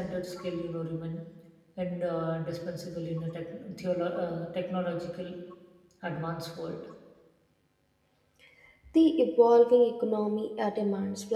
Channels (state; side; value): identical; both; correlation 1.00